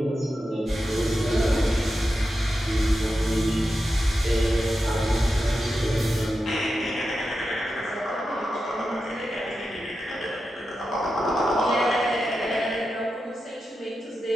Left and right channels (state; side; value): normal; both; correlation 0.90